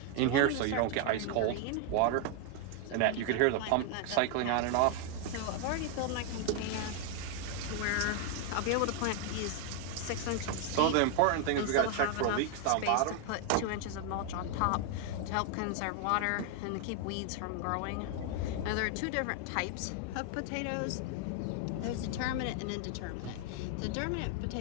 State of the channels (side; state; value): both; different; correlation 0.00